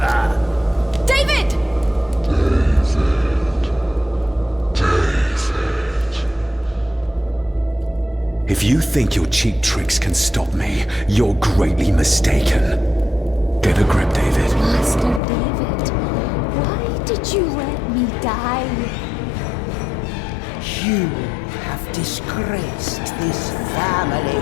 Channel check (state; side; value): drops out; right; at 15.2 s